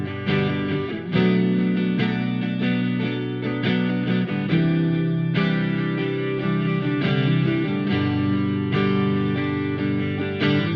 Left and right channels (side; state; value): both; identical; correlation 1.00